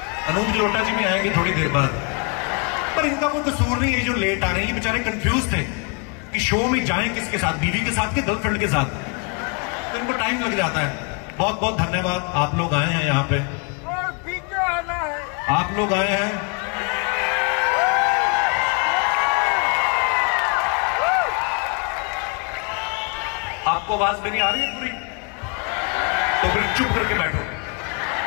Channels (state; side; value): quieter; right; 34.3 dB